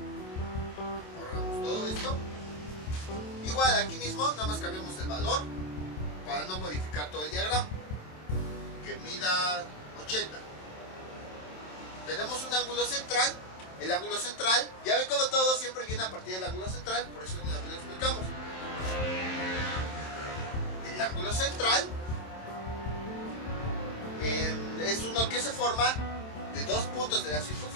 Borramos todo esto. Igual aquí mismo, nada más cambiamos el valor para no modificar todo el diagrama. Que mida 80. Tenemos un ángulo central. El ángulo central, ya ven como todo siempre viene a partir del ángulo central, por eso una vez lo explicamos. El ángulo central es uno que se forma de dos puntos de la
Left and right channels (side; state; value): right; late; 27 ms